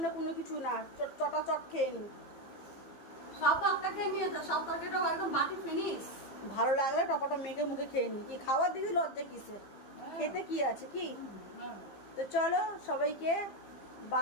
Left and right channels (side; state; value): right; late; 15 ms